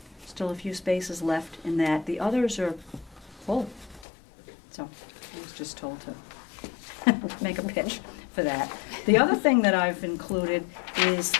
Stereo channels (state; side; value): drops out; right; at 4.0 s